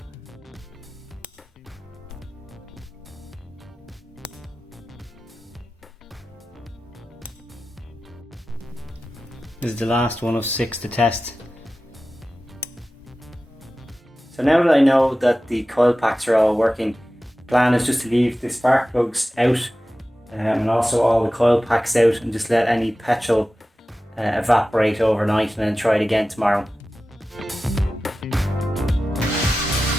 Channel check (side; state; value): both; normal; correlation 0.95